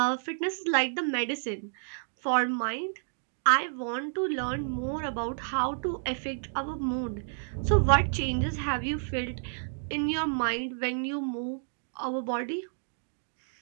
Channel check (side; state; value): left; silent; digital silence